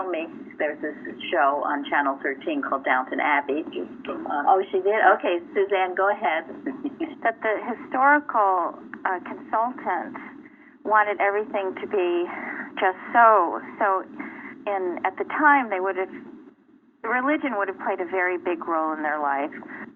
me there's this show on Channel 13 called Downton Abbey. Oh, she did? Okay, Suzanne, go ahead. That the historical consultant wanted everything to be just so. So at the time, religion would have played a very big role in their life.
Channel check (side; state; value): both; identical; correlation 1.00